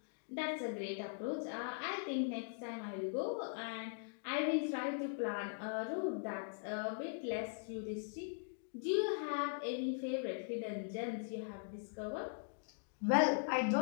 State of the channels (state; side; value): silent; right; digital silence